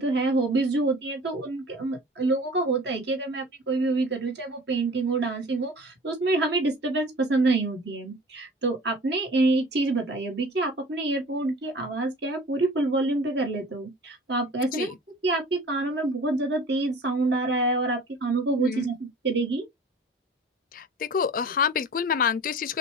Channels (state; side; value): normal; both; correlation 0.43